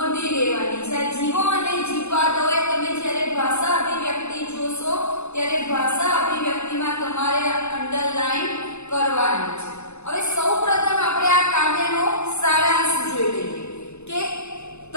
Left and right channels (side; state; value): right; late; 0.81 ms